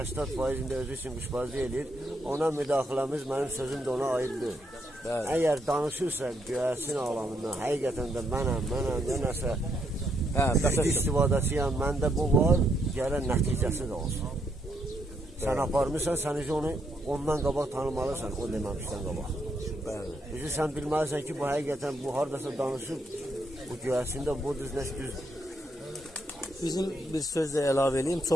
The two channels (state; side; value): normal; both; correlation 0.76